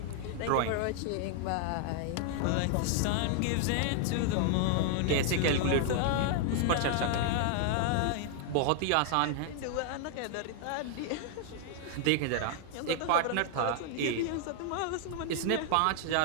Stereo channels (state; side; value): different; both; correlation 0.00